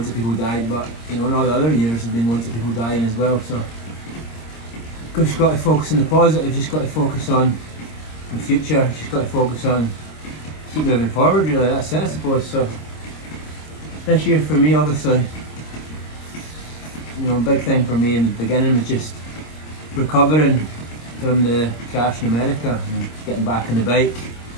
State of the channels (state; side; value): late; right; 26 ms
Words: of people died, but you know, in all the other years have been loads of people dying as well. So just got to focus on the positive, just got to focus on the future, just got to focus on keep moving forward, really. That's it, I suppose. So this year for me, obviously, you know, a big thing for me in the beginning was just recovering from the crash in America and getting back on the bike.